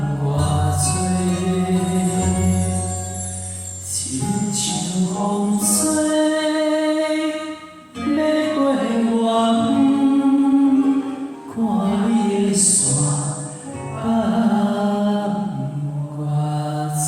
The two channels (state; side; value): identical; both; correlation 1.00